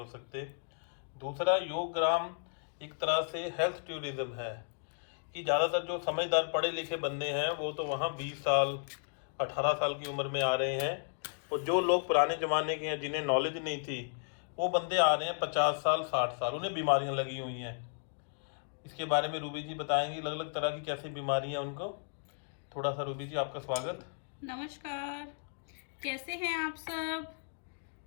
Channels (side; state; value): right; silent; digital silence